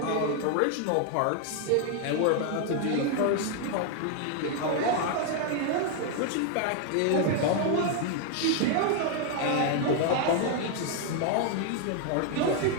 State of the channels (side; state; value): both; different; correlation 0.00